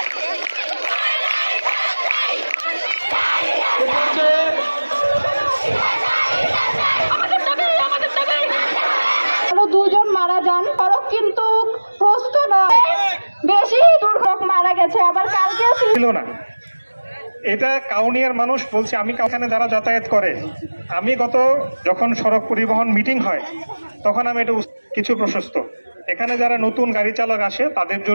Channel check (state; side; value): inverted; both; correlation -1.00